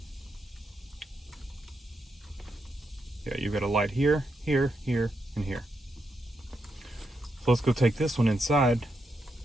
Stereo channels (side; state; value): both; normal; correlation 0.83